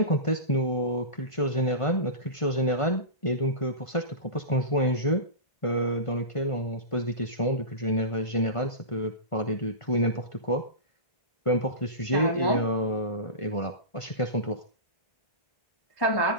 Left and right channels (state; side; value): late; right; 1.5 ms